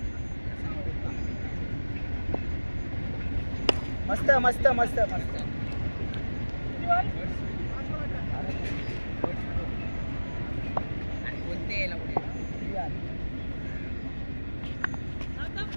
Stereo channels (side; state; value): both; inverted; correlation -1.00